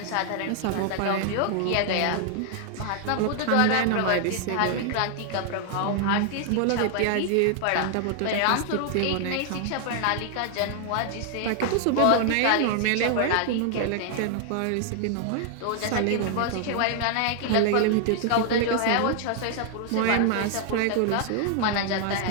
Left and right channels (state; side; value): different; both; correlation 0.00